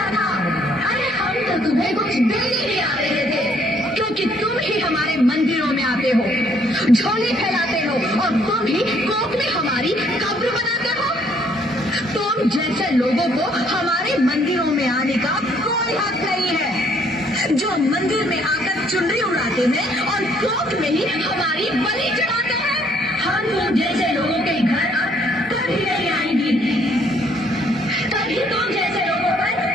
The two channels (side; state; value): both; normal; correlation 0.65